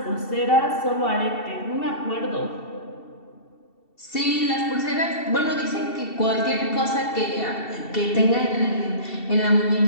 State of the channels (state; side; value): late; right; 2.7 ms